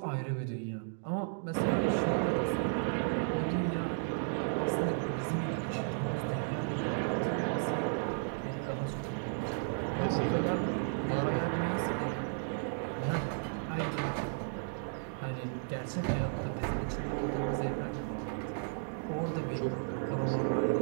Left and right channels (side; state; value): left; silent; digital silence